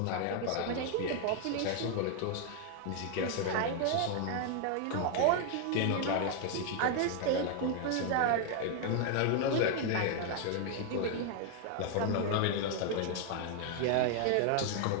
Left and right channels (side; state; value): both; different; correlation 0.00